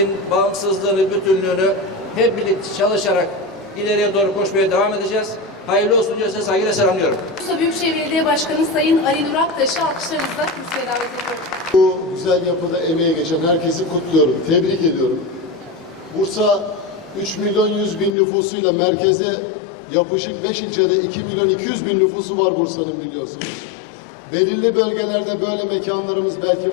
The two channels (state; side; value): drops out; right; at 18.2 s